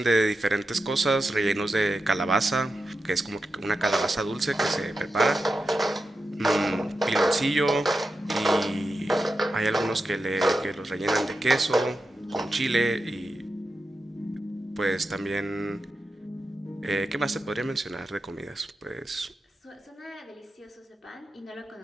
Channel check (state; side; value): normal; both; correlation 0.89